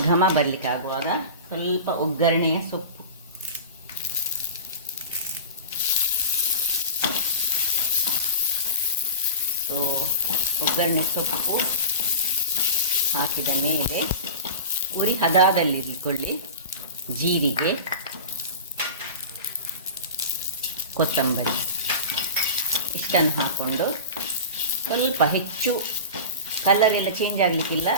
ಘಮ ಬರಲಿಕ್ಕೆ ಆಗುವಾಗ ಸ್ವಲ್ಪ ಒಗ್ಗರಣೆಯ ಸೊಪ್ಪು, ಒಗ್ಗರಣೆ ಸೊಪ್ಪು ಹಾಕಿದ ಮೇಲೆ ಉರಿ ಹದದಲ್ಲಿಟ್ಕೊಳ್ಳಿ. ಜೀರಿಗೆ, ಕೊತ್ತಂಬರಿ ಇಷ್ಟನ್ನು ಹಾಕ್ಕೊಂಡು ಸ್ವಲ್ಪ ಹೆಚ್ಚು ಕಲರ್ ಎಲ್ಲ ಚೇಂಜ್ ಆಗಲಿಕ್ಕಿಲ್ಲ.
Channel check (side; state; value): both; inverted; correlation -0.32